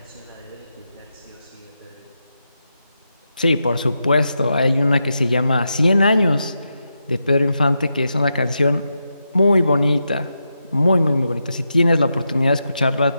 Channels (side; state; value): both; inverted; correlation -0.87